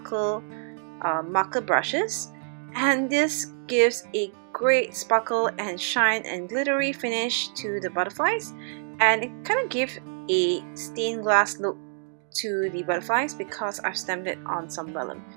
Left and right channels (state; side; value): silent; left; digital silence